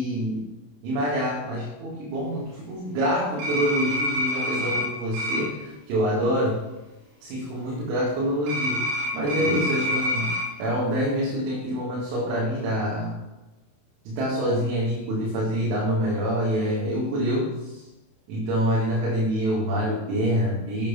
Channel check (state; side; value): late; left; 27 ms